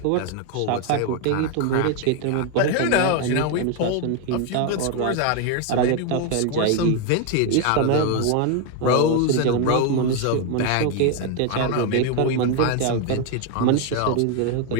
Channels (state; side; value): different; both; correlation 0.01